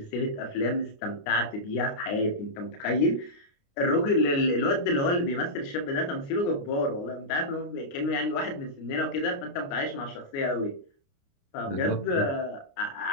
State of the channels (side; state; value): right; late; 29 ms